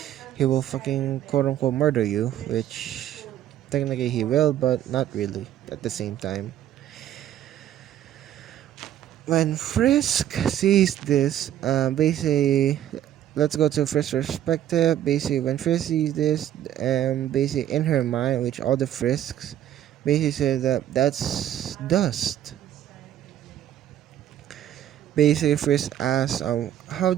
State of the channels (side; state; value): left; quieter; 11.4 dB